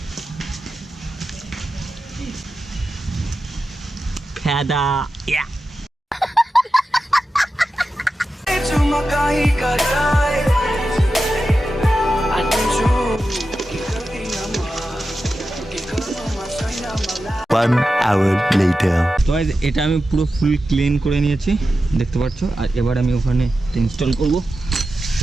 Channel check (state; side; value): normal; both; correlation 0.92